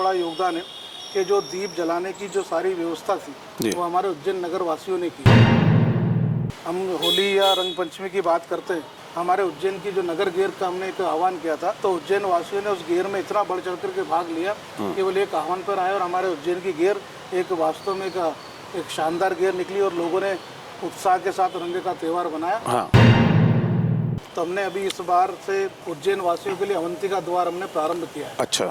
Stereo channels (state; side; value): identical; both; correlation 1.00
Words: योगदान है कि जो दीप जलाने की जो सारी व्यवस्था थी वो हमारे उज्जैन नगर वासियों ने की। हम होली या रंग पंचमी की बात करते हैं, हमारे उज्जैन की जो नगर गेर का हमने एक आह्वान किया था, तो उज्जैन वासियों ने उस गेर में इतना बढ़ चढ़ करके भाग लिया केवल एक आह्वान पर आए और हमारे उज्जैन की गेर एक वास्तव में एक शानदार गेर निकली और लोगों ने उत्साह के साथ रंग का त्यौहार बनाया। हाँ। तो हमने अभी इस बार से उज्जैन वासियों के लिए अवंतिका द्वार हमने प्रारंभ किया है। अच्छा।